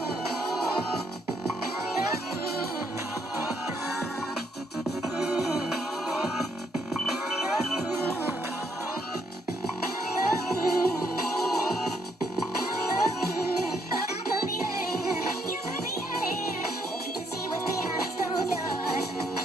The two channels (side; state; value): both; normal; correlation 0.72